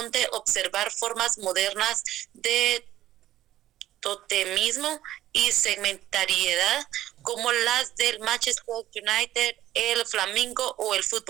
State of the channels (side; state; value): left; quieter; 13.8 dB